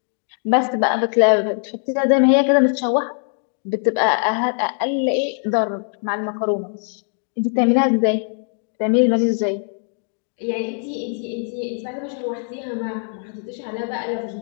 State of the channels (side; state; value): right; silent; 56 dB below the other